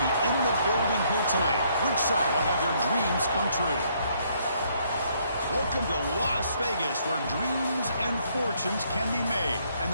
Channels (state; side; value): inverted; both; correlation -0.69